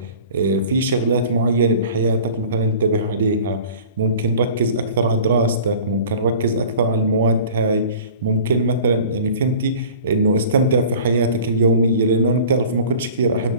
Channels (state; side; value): inverted; both; correlation -0.43